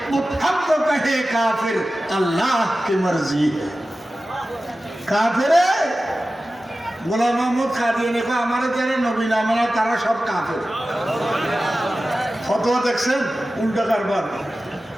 मुत्तहम तो कहे काफिर अल्लाह की मर्जी है। काफिर গোলাম মোহাম্মদ কাদিয়ানী কো আমারে যারা নবী না মানে তারা সব কাফের। ফতোয়া দেখছেন উল্টা কারবার।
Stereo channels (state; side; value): normal; both; correlation 0.95